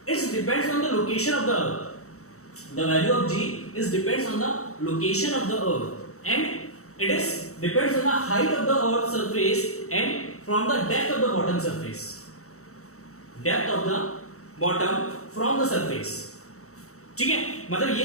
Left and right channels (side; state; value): right; late; 0.64 ms